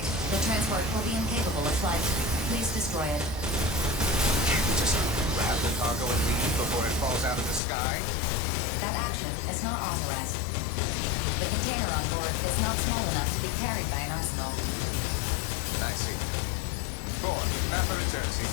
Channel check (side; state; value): right; drops out; at 7.6 s